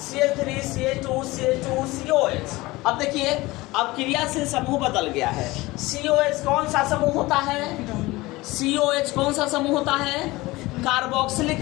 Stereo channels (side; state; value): right; quieter; 20.5 dB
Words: CH3 CH2 CH2 COH। अब देखिए अब क्रियाशील समूह बदल गया है। COH कौन सा समूह होता है, COH कौन सा समूह होता है,